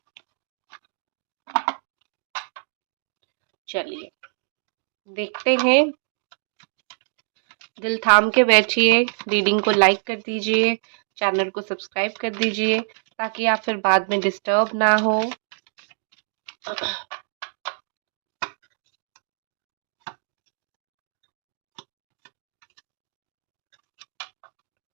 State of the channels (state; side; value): silent; left; digital silence